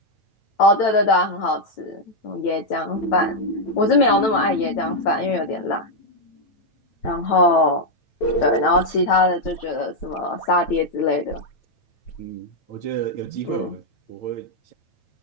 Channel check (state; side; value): late; right; 9.0 ms